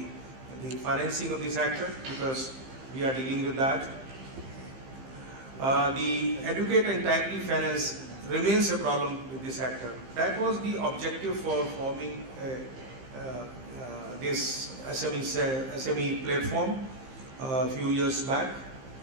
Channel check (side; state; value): left; late; 15 ms